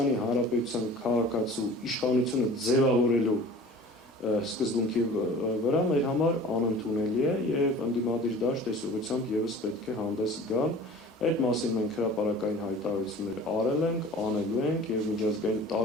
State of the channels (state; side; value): normal; both; correlation 0.42